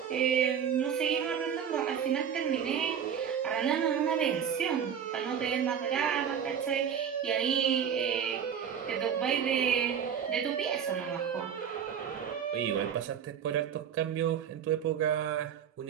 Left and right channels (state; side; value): quieter; left; 8.1 dB